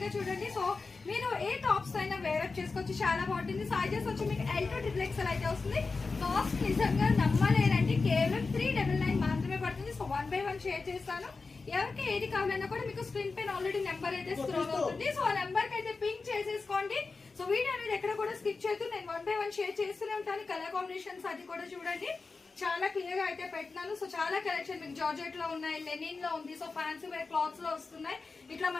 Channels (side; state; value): right; quieter; 4.2 dB